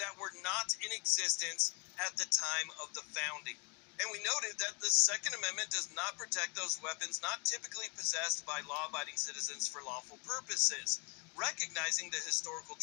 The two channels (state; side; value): quieter; right; 32.9 dB